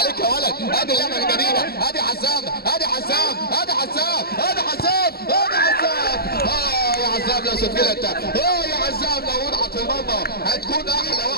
يا ولد، ادي اللعبة من جديدة، ادي حسام يا عزام لو سجلت، يا عزام لو وضعت في المرمى هتكون احلى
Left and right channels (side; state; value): right; late; 0.45 ms